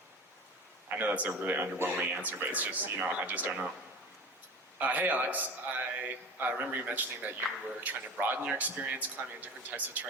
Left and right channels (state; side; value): normal; both; correlation 0.35